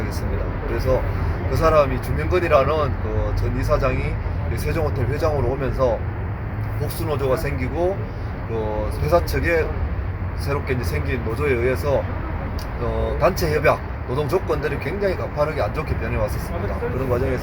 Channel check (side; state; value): both; identical; correlation 1.00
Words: 그래서 그 사람이 주명건이라는 그 전 이사장이 세종호텔 회장으로 오면서 복수노조가 생기고 그 회사 측에 새롭게 이제 생긴 노조에 의해서 단체 협약, 노동 조건들이 굉장히 가파르게 안 좋게 변해왔었습니다. 그런